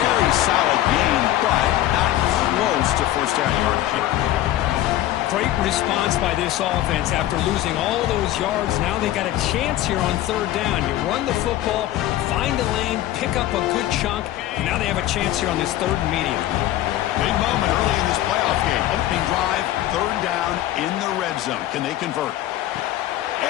solid gain, but not close to first down yardage. Great response by this offense after losing all those yards. Now they got a chance here on third down. You run the football, find a lane, pick up a good chunk, and now they have a chance here on this third and medium. Big moment early in this playoff game. Opening drive, third down in the red zone. Can they convert?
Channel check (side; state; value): right; quieter; 13.9 dB